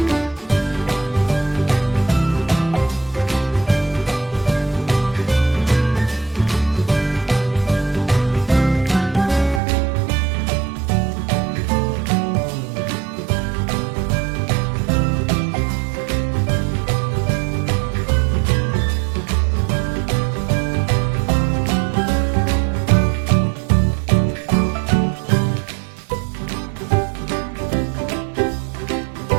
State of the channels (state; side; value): drops out; left; at 9.6 s